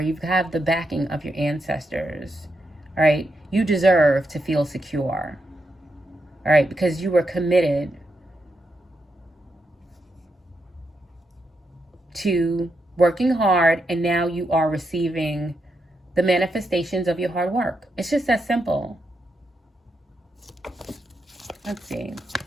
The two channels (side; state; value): both; normal; correlation 0.83